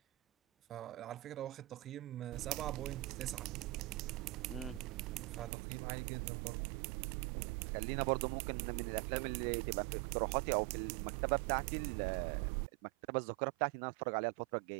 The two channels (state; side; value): drops out; left; at 5.5 s